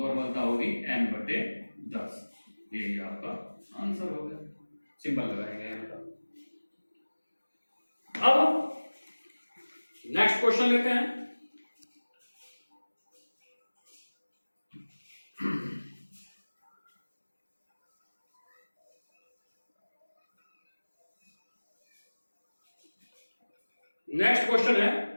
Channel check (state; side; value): inverted; both; correlation -1.00